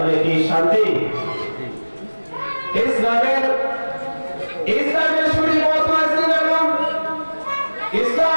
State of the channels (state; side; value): inverted; both; correlation -1.00